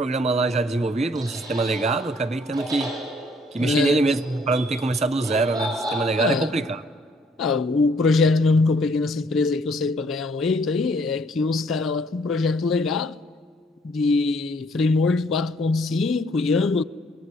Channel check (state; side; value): normal; both; correlation 0.64